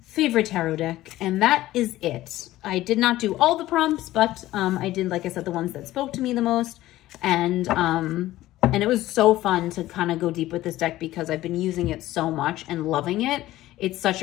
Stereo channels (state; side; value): quieter; right; 15.7 dB